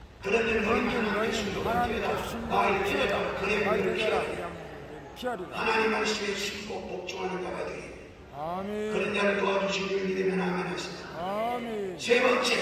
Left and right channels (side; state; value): both; identical; correlation 1.00